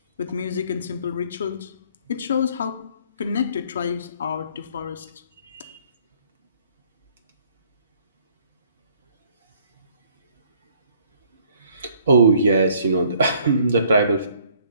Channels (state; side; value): inverted; both; correlation -0.61